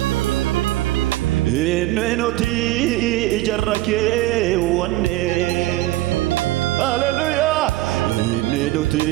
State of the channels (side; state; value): left; quieter; 17.4 dB